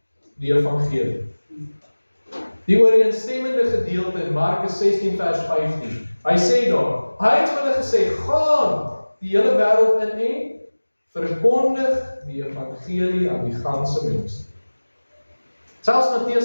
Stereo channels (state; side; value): inverted; both; correlation -1.00